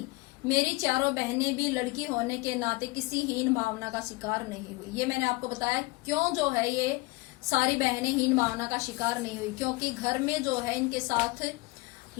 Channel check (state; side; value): quieter; right; 24.0 dB